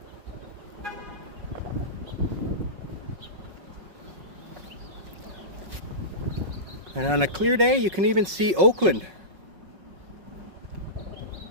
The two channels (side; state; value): left; late; 5.4 ms